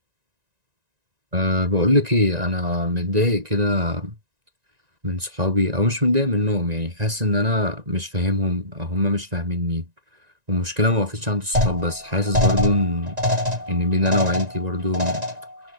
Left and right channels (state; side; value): late; left; 1.9 ms